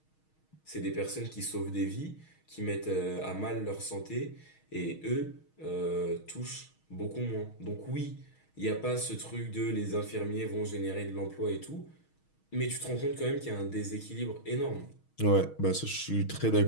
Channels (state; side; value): late; right; 6.4 ms